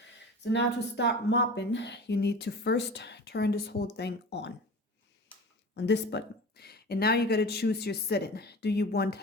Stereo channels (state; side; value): normal; both; correlation 0.35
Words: So now to start mopping, you need to first turn this whole thing on this button. And now you got to choose your setting. Do you want